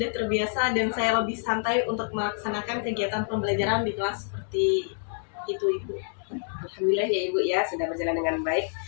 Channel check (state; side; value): silent; right; digital silence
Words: terbiasa dan saya lebih santai untuk melaksanakan kegiatan pembelajaran di kelas seperti itu, Ibu. Alhamdulillah ya Ibu ya, sudah berjalan dengan baik.